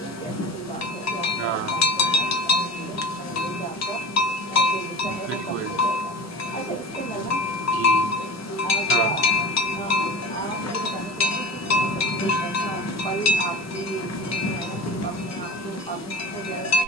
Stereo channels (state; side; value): normal; both; correlation 0.34